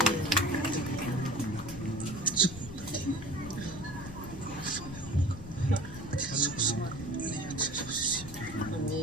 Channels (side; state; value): left; noise; rumble, 13 dB below the sound